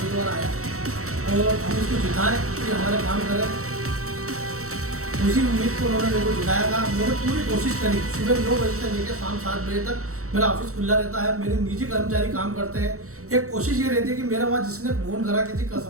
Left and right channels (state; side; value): late; left; 0.64 ms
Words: आया और हम इसको जिताएं कि हमारे काम करें। उसी उम्मीद को उन्होंने मेरे को जिताया था। मैंने पूरी कोशिश करी। सुबह 9 बजे से लेकर शाम 7 बजे तक मेरा ऑफिस खुला रहता है। मेरे निजी कर्मचारी काम करते हैं। एक कोशिश ये रहती है कि मेरा वहाँ जिसने फोन करा किसी का